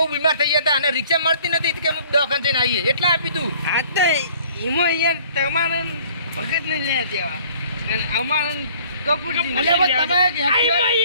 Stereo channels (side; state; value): both; inverted; correlation -0.54